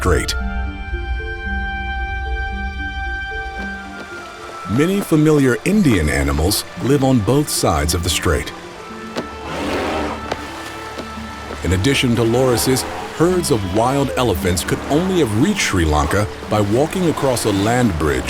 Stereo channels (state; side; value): identical; both; correlation 1.00